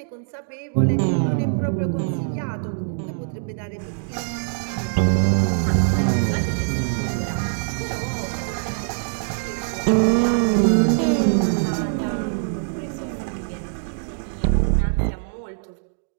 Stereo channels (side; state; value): left; silent; digital silence